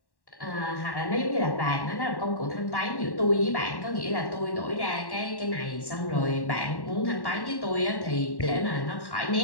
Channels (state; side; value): late; right; 1.1 ms